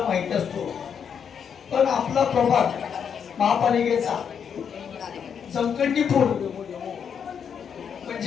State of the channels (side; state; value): right; quieter; 7.4 dB